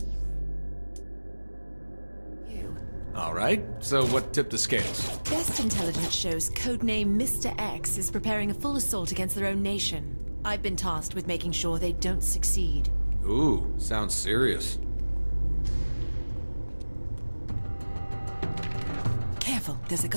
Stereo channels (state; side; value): inverted; both; correlation -1.00